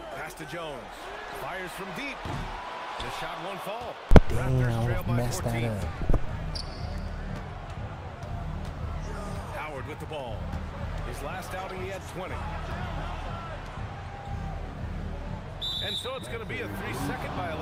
Pass to Jones. Fires from deep. The shot won't fall. Raptors trail by 14. That up. Howard with the ball. His last outing, he had 20. And so it's going to be a 3-second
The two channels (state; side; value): identical; both; correlation 1.00